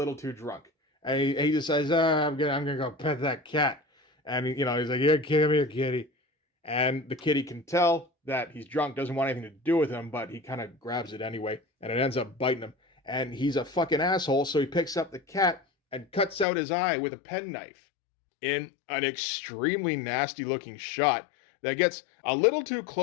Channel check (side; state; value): right; drops out; at 16.4 s